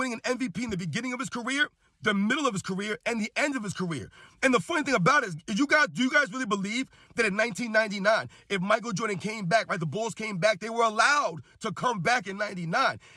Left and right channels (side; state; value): both; identical; correlation 1.00